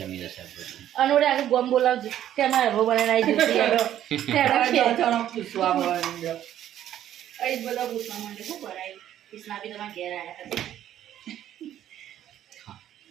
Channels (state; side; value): quieter; left; 11.5 dB